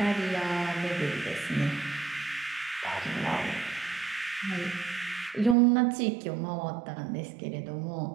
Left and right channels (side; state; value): left; drops out; at 5.6 s